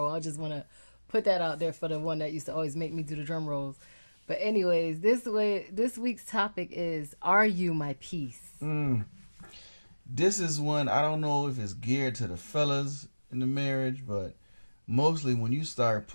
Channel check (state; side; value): inverted; both; correlation -1.00